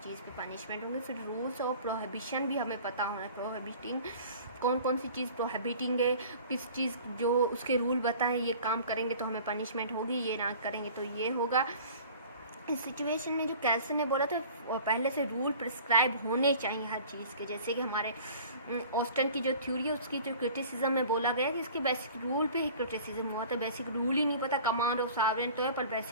की पनिशमेंट होंगे। फिर रूल्स और प्रोहिबिशन भी हमें पता होना है, प्रोहिबिटिंग कौन सी चीज़ प्रोहिबिटिंग है, किस चीज़ जो उसके रूल बताएं ये काम करेंगे तो हमें पनिशमेंट होगी, ये ना करेंगे तो ये होगा। इस सिचुएशन में जो कैल्सन ने बोला था पहले से रूल प्रिस्क्राइब होने चाहिए हर चीज़ के। जैसे कि हमारे ऑस्टन की जो थ्योरी है उसकी जो क्रिटिसिज्म में बोला गया कि इसके बेसिक रूल पे ही क्रिटिसिज्म हुआ था। बेसिक रूल ही नहीं पता, कमांड ऑफ सॉवरेन तो है पर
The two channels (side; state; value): both; inverted; correlation -0.45